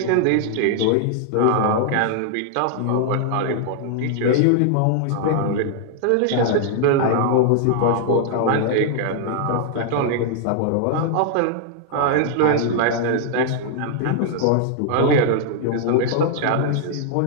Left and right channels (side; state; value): both; different; correlation 0.00